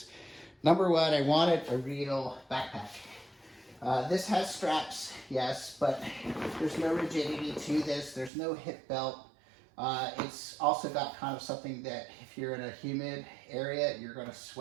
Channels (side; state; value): left; drops out; at 8.3 s